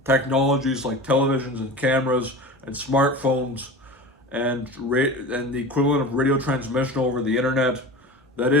technologies like televisions and cameras and smartphones and the equivalent of radio transmission over the internet. That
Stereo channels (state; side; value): normal; both; correlation 0.33